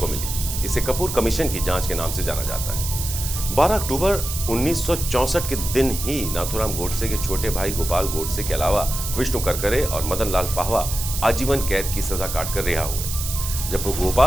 मिली। इसे कपूर कमीशन की जांच के नाम से जाना जाता है। 12 अक्टूबर 1964 के दिन ही नाथूराम गोडसे के छोटे भाई गोपाल गोडसे के अलावा विष्णु करकरे और मदन लाल पाहवा आजीवन कैद की सजा काटकर रिहा हुए। जब वो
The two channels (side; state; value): right; noise; hiss, 6 dB below the sound